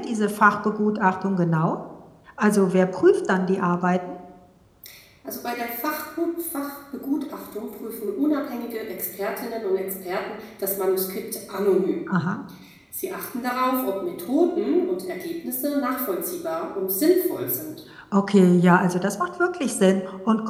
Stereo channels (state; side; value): identical; both; correlation 1.00